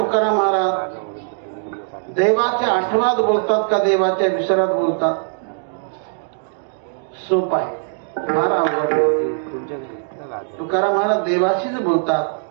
महाराज देवाच्या आठवणात बोलतात का देवाच्या विसरात बोलतात? सोप आहे, फार अवघड. तुकाराम महाराज देवाशीच बोलतात,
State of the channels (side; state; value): left; silent; digital silence